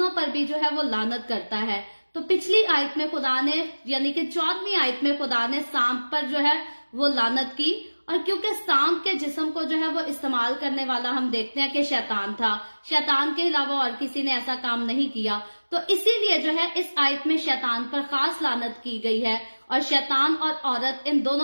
पर भी जो है वो लानत करता है। तो पिछली आयत में खुदा ने यानी कि 14वीं आयत में खुदा ने सांप पर जो है वो लानत की, और क्योंकि सांप के जिस्म को जो है वो इस्तेमाल करने वाला हम देखते हैं कि शैतान था, शैतान के अलावा और किसी ने ऐसा काम नहीं किया, तो इसीलिए जो है इस आयत में शैतान पर खास लानत की गई है। और शैतान और औरत इन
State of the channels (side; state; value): both; inverted; correlation -1.00